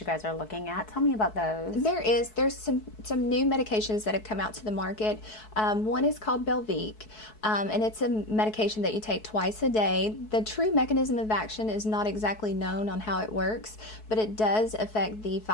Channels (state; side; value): late; right; 4.6 ms